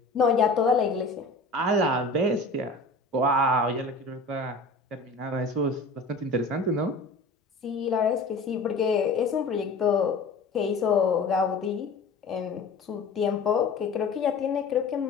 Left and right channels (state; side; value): quieter; right; 3.3 dB